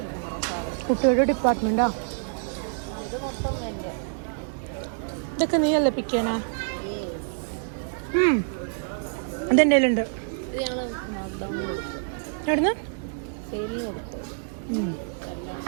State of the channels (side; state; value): left; silent; digital silence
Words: കുട്ടിയുടെ ഡിപ്പാർട്ട്മെൻറ്റാ. ഇതൊക്കെ നീയല്ലേ പിക്കാനാ? അതെൻ്റെ കയ്യിലുണ്ട്. എവിടുന്ന്?